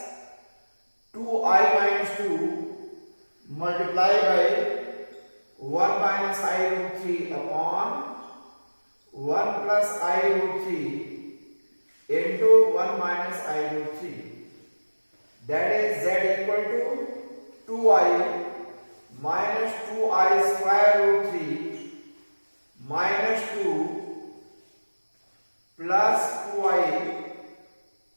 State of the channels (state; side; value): inverted; both; correlation -1.00